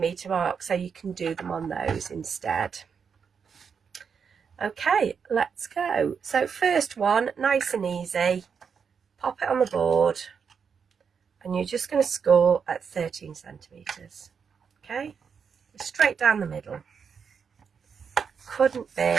marks, so you can do them on those instead. Okay, let's go. So first one, nice and easy, pop it on the board and you're just going to score at 13 centimetres. Okay, straight down the middle. Couldn't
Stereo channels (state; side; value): quieter; left; 6.4 dB